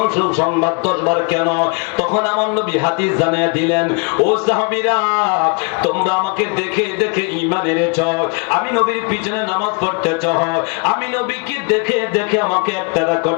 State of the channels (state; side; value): quieter; right; 33.9 dB